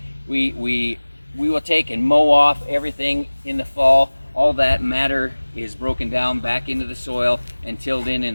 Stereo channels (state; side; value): inverted; both; correlation -1.00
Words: We will take and mow off everything in the fall. All that matter is broken down back into the soil and tilled